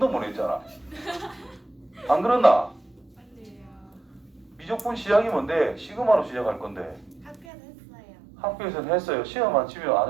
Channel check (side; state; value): left; drops out; at 7.5 s